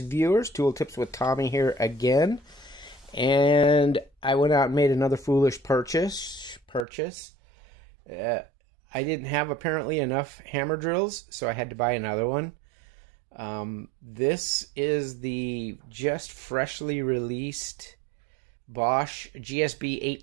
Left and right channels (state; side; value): drops out; left; at 6.9 s